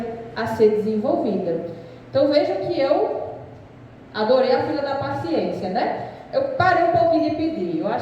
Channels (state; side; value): identical; both; correlation 1.00